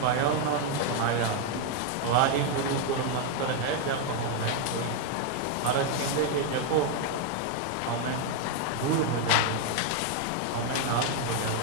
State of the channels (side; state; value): both; different; correlation 0.01